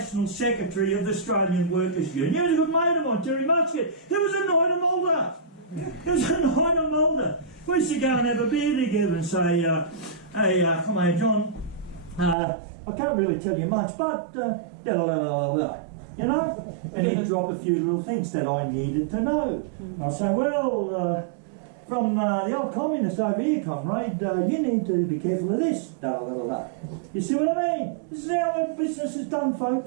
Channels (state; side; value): drops out; left; at 12.4 s